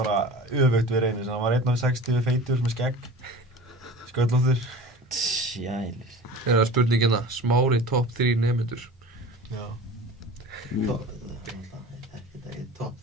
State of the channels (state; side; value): normal; both; correlation 0.37